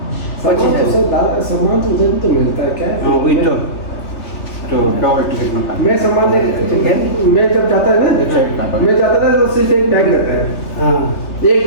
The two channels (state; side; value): late; right; 3.5 ms